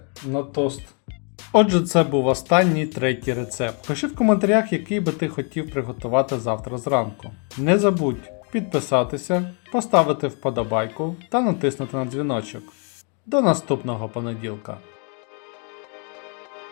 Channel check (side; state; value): right; quieter; 38.9 dB